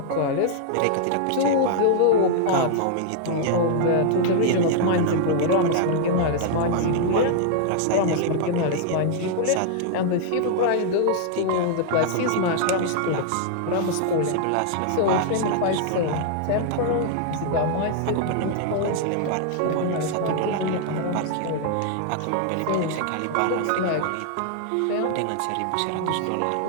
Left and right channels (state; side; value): different; both; correlation -0.01